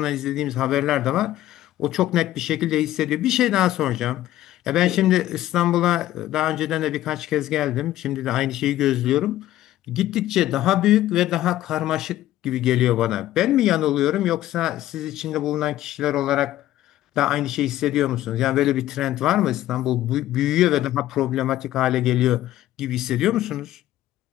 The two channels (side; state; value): right; quieter; 14.1 dB